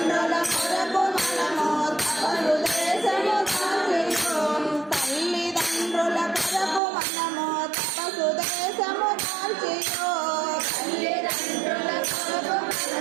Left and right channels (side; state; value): left; drops out; at 6.8 s